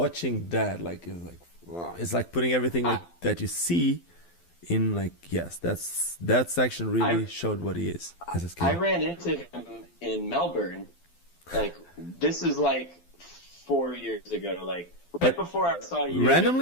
that, like it was like, wow, it's like putting everything like that you see in like that section really showed what he is as a skater. I ran into him in Melbourne. Like this is like 4 years ago. Like right before I saw you.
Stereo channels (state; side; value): late; right; 12 ms